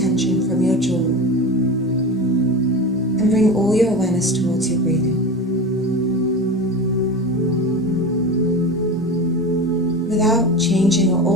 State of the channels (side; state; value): both; normal; correlation 0.27